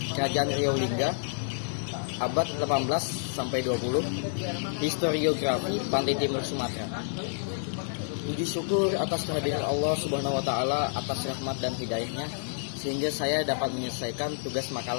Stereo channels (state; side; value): silent; right; digital silence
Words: Kerajaan Riau Lingga abad 18 sampai 20, Historiografi Pantai Timur Sumatera. Puji syukur atas kehadiran Allah Subhanahu wa taala atas rahmat dan hidayahnya sehingga saya dapat menyelesaikan tugas